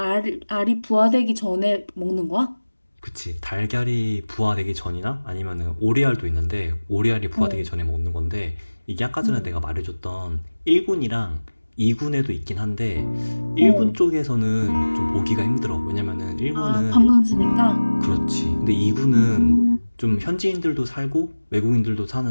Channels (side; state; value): both; inverted; correlation -1.00